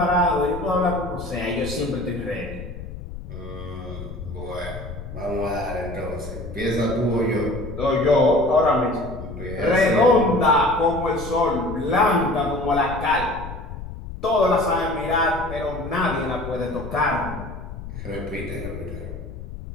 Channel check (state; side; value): noise; left; rumble, 10 dB below the sound